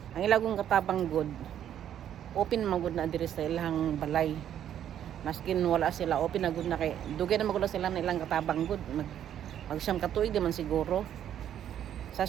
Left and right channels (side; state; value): left; quieter; 10.3 dB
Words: Ang ilagong katabang good. Open man good na diri sa ilang balay. Maskin wala sila open na good na kay dugay na magula sila na ilang katabang good. Magsyam katuig di man siguro. Sa